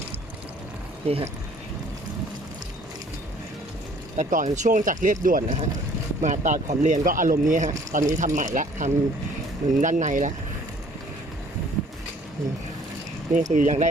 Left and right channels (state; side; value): normal; both; correlation 0.56